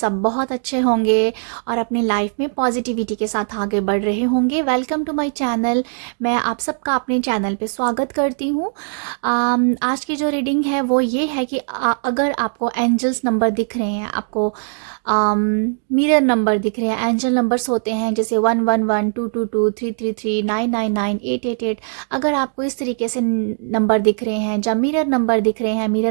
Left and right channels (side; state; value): left; silent; digital silence